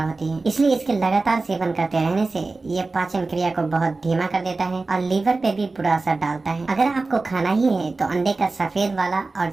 होती है, इसलिए इसके लगातार सेवन करते रहने से ये पाचन क्रिया को बहुत धीमा कर देता है और लीवर पे भी बुरा असर डालता है। अगर आपको खाना ही है तो अंडे का सफेद वाला और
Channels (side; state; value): left; quieter; 3.6 dB